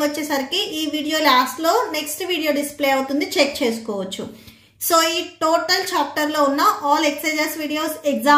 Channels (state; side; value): identical; both; correlation 1.00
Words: వచ్చేసరికి ఈ video last లో next video display అవుతుంది, check చేసుకోవచ్చు. So ఈ total chapter లో ఉన్న all exercises videos,